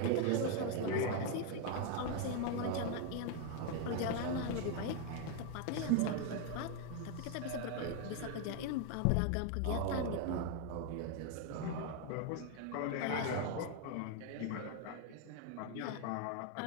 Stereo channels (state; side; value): different; both; correlation 0.01